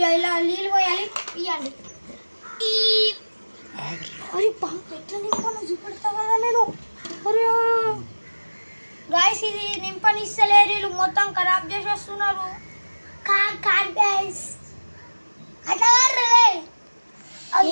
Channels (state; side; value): inverted; both; correlation -1.00